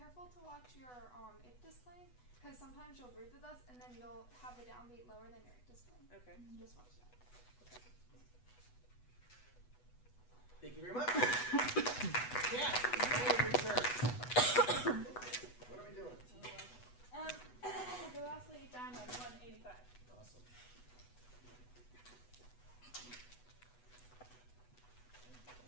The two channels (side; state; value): right; late; 8.1 ms